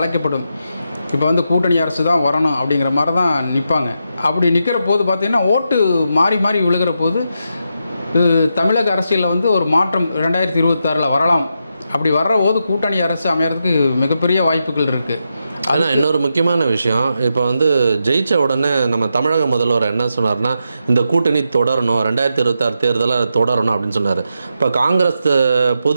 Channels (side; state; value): both; inverted; correlation -0.85